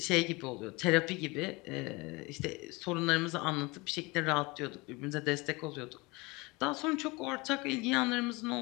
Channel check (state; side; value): quieter; right; 24.8 dB